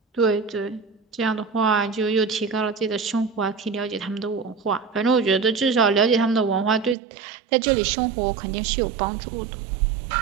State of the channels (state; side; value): drops out; left; at 7.0 s